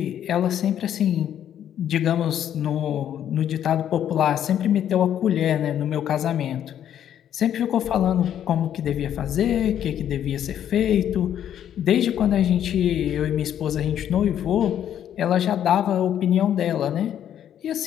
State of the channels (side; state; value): right; quieter; 10.2 dB